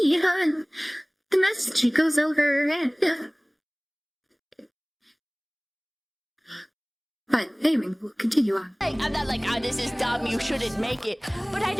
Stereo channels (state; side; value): identical; both; correlation 1.00